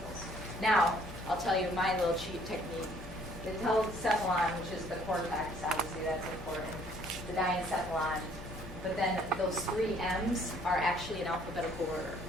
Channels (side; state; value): left; noise; hum, 13 dB below the sound